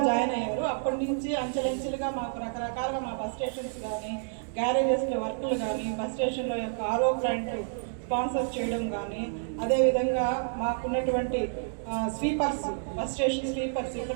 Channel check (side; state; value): left; silent; digital silence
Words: జాయిన్ అయ్యారు. అప్పటి నుంచి అంచెలంచెలుగా మాకు రకరకాలుగా మా బస్ స్టేషన్స్ కానీ, గ్యారేజెస్లో వర్కులు కానీ, బస్ స్టేషన్లో యొక్క ఆర్ఓ ప్లాంట్ స్పాన్సర్ చేయడం కానీ, అదేవిధంగా మాకున్నటువంటి స్వీపర్స్, బస్ స్టేషన్ స్వీపర్స్